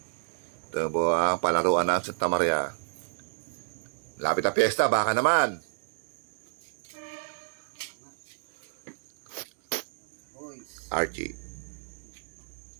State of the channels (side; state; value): left; silent; 58 dB below the other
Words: Ito po ang palaruan ng Santa Maria. Lapit na piyesta, baka naman. Archie.